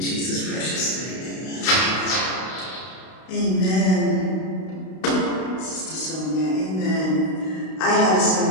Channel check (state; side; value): late; right; 32 ms